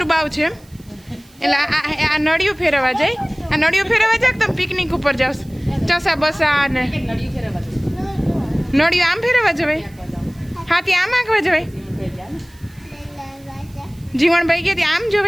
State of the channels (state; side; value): noise; right; hiss, 28 dB below the sound